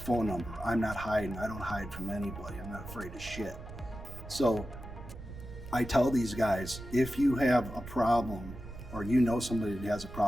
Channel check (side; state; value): right; noise; rumble, 13 dB below the sound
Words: number. I'm not hiding. I don't hide from anybody. I'm not afraid of shit. So I tell these guys, if you have a problem or you know somebody that has a